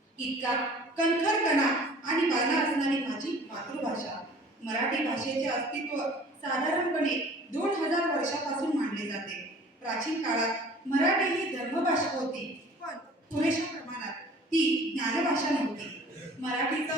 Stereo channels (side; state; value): both; normal; correlation 0.48